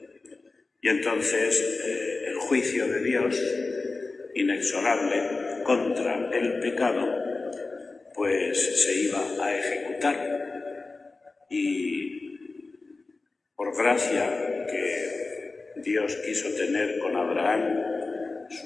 Y entonces el juicio de Dios, inexorable contra el pecado, pues se iba a ejecutar. Y por gracia que Dios quiso tener con Abraham,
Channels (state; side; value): quieter; right; 3.7 dB